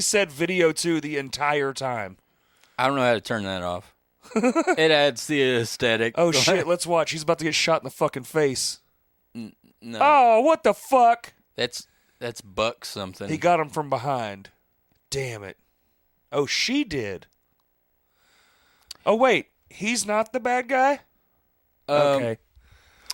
video 2 the entire time. I don't know how to turn that off. It adds the aesthetic. Oh, shit. Let's watch. He's about to get shot in the fucking face. No, Oh, what the fuck? that's Buck something. He got him from behind. Damn it. Oh, she did. Oh, wait. He's not the bad guy? Okay.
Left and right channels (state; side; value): identical; both; correlation 1.00